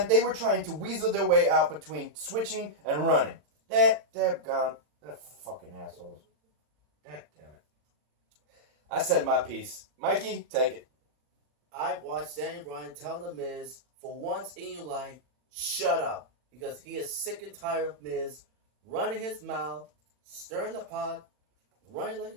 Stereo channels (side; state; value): left; late; 40 ms